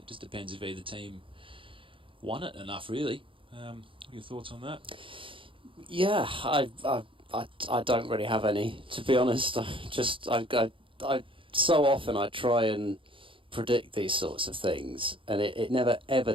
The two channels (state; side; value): late; left; 0.25 ms